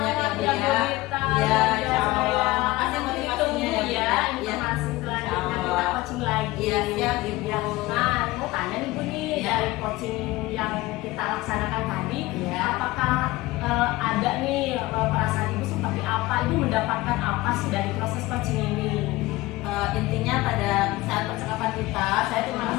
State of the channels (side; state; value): right; quieter; 19.3 dB